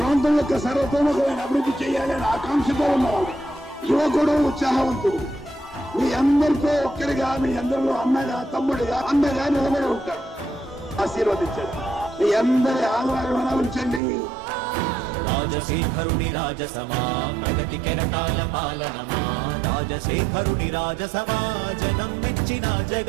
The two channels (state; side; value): drops out; left; at 14.0 s